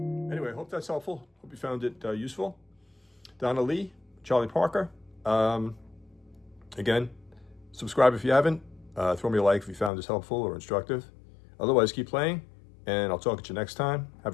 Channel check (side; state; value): right; drops out; at 9.9 s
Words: Anyway, hope that's helpful. Hope you found it useful. Donna Lee, Charlie Parker. Again, subscribe if you haven't. Throw me a like if you found this helpful or instructive. Otherwise, keep playing, and I'll talk at you next time. Have